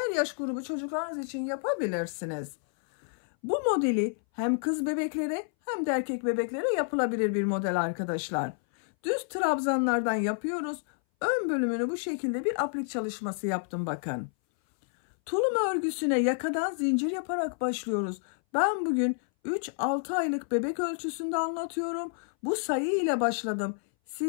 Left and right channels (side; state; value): right; silent; 58 dB below the other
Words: yaş grubu çocuklarınız için yapabilirsiniz. Bu modeli hem kız bebeklere hem de erkek bebeklere yapılabilir bir model arkadaşlar. Düz trabzanlardan yapıyoruz. Ön bölümünü bu şekilde bir aplik çalışması yaptım bakın. Tulum örgüsüne yakadan zincir yaparak başlıyoruz. Ben bugün 3-6 aylık bebek ölçüsünde anlatıyorum. Bu sayı ile başladım.